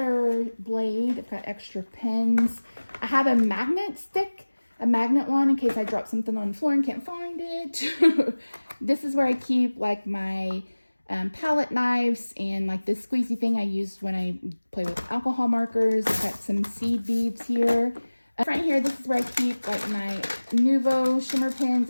blade. I've got extra pens. I have a magnet stick, a magnet one in case I drop something on the floor and can't find it. This is where I keep like my palette knives and like this squeezy thing I use when I play with alcohol markers. I've got some seed beads here. Right here, this is where I keep like my Nuvo shimmer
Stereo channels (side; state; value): both; inverted; correlation -1.00